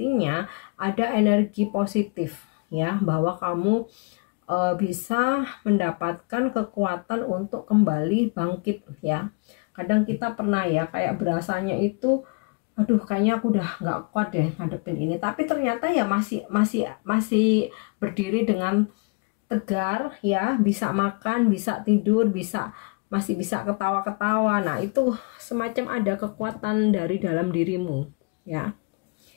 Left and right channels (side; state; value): right; quieter; 31.6 dB